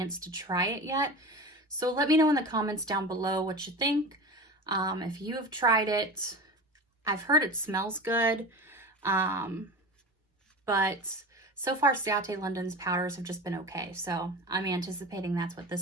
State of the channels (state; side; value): normal; both; correlation 0.31